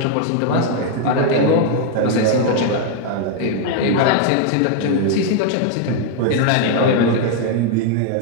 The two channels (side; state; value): both; different; correlation 0.00